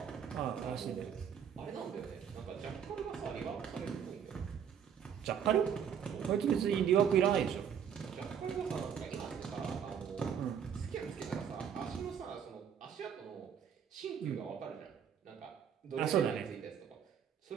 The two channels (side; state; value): left; quieter; 8.1 dB